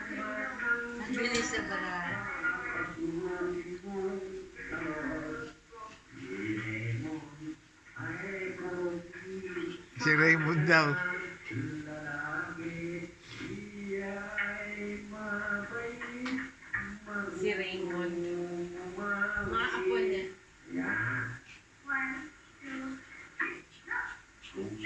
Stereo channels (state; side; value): identical; both; correlation 1.00